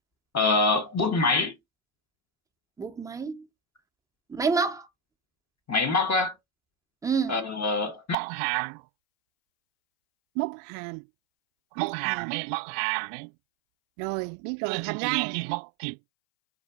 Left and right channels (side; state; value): left; drops out; at 8.2 s